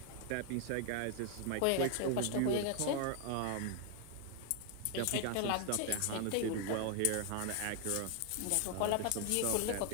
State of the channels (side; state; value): both; different; correlation 0.00